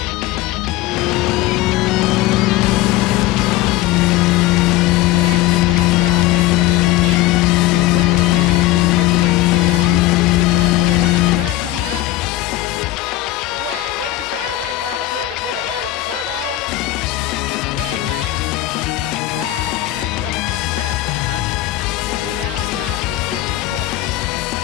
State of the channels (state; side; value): quieter; right; 15.5 dB